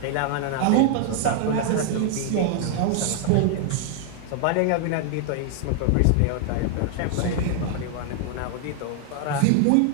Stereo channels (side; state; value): both; different; correlation 0.00